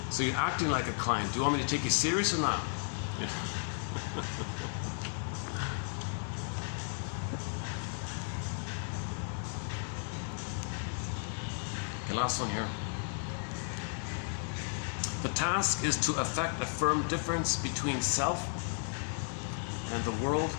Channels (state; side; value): silent; right; 55 dB below the other